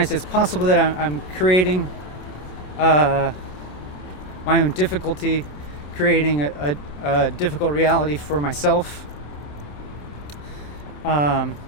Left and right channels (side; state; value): right; late; 27 ms